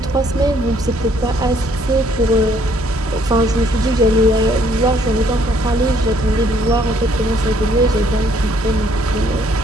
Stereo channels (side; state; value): both; normal; correlation 0.65